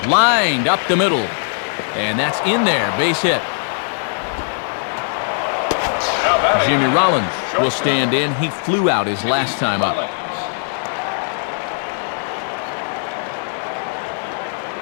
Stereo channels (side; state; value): right; silent; digital silence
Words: Lined up the middle. And that's in there, base hit. Jimmy Rollins will stand in. He flew out his last time up.